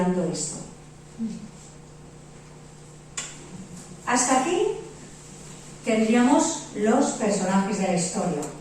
esto. Hasta aquí tendríamos los personajes de la historia.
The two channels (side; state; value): both; identical; correlation 1.00